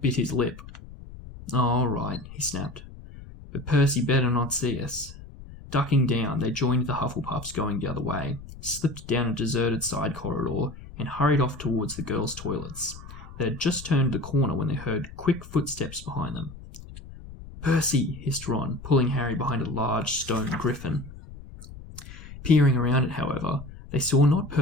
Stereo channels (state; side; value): noise; left; rumble, 15 dB below the sound